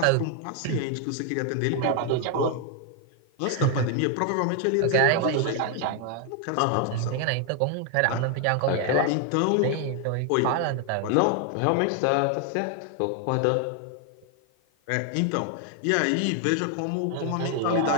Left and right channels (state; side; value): different; both; correlation 0.00